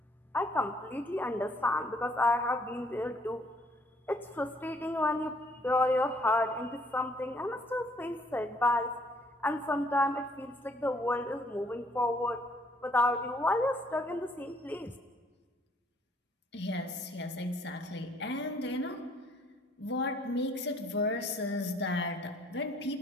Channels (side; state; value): both; normal; correlation 0.64